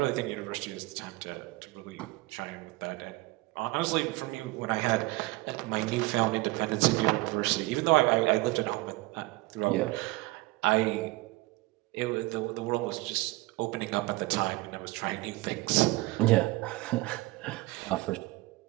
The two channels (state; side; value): quieter; left; 21.6 dB